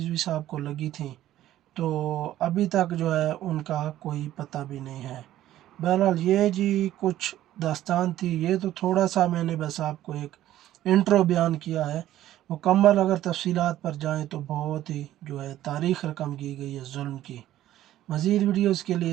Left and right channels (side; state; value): left; quieter; 13.4 dB